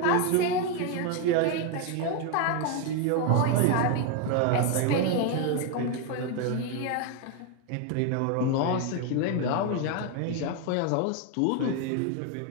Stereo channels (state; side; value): different; both; correlation 0.01